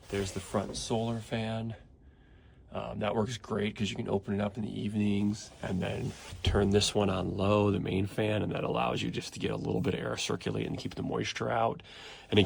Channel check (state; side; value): identical; both; correlation 1.00